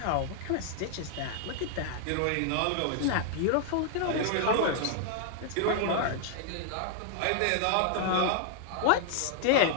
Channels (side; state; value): both; different; correlation 0.00